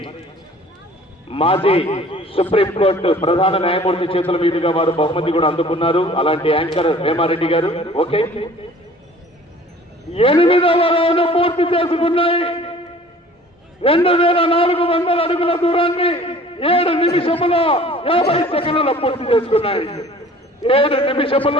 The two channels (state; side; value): normal; both; correlation 0.49